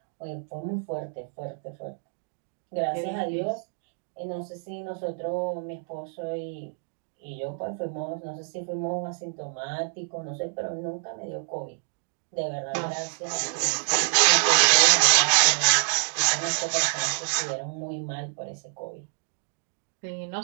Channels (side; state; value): left; silent; digital silence